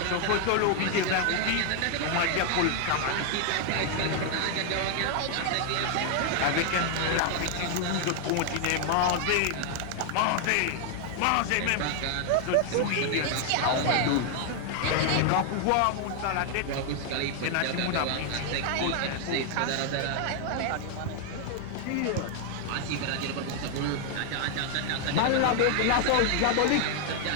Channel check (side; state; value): both; different; correlation 0.00